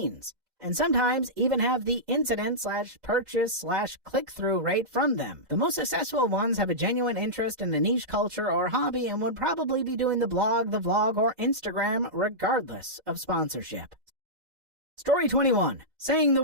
And sometimes even have the incident/purchase/click-through rate from them. The most successful ones have a genuine interest in a niche culture or hobby and would probably be doing the blog, the vlog, or Instagram regardless of sponsorship. Story 21. Saying the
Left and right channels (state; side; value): late; left; 2.1 ms